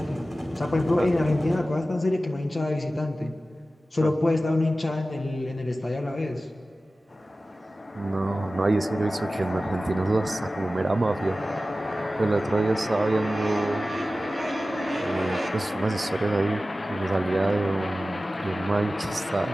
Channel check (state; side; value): normal; both; correlation 0.95